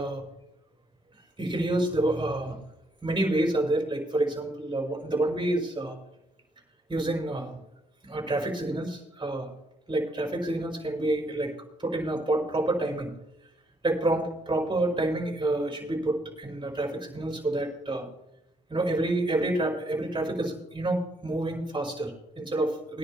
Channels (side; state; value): both; normal; correlation 0.72